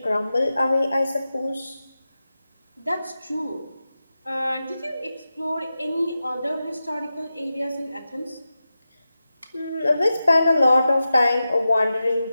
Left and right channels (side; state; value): both; inverted; correlation -0.92